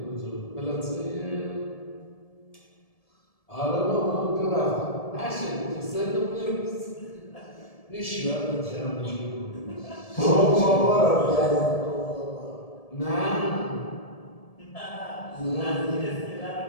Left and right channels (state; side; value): late; right; 1.7 ms